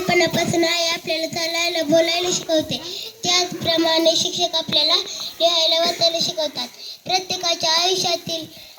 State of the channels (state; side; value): identical; both; correlation 1.00